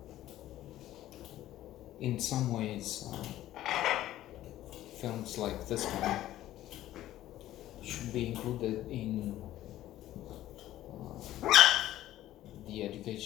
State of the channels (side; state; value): right; quieter; 14.0 dB